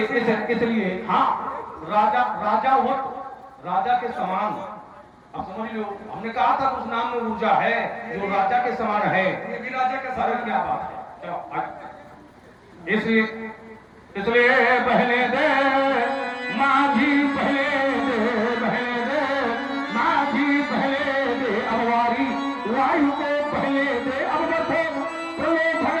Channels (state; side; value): identical; both; correlation 1.00